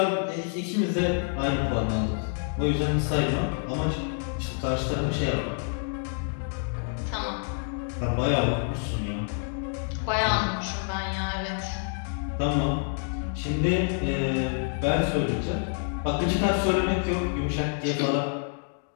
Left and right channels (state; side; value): silent; right; 60 dB below the other